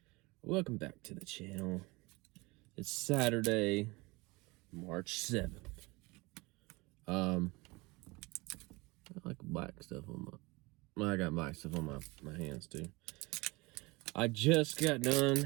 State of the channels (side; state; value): left; quieter; 24.3 dB